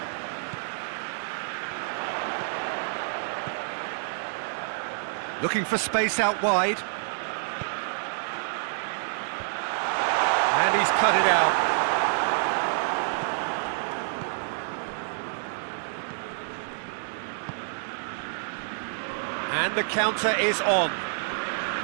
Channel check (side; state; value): left; silent; digital silence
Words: Looking for space out wide. And he's cut it out. And the counter is on.